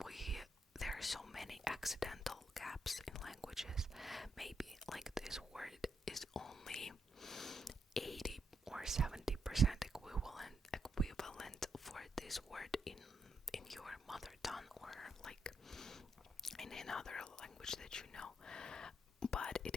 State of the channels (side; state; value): both; normal; correlation 0.79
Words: there are so many accidental gaps in languages. Maybe like this word is only 80 or 70% equivalent for this word in your mother tongue, or like in another language that you know, but